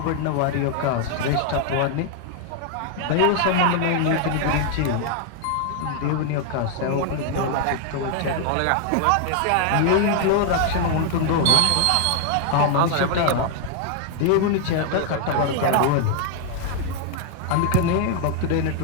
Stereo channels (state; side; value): different; both; correlation 0.00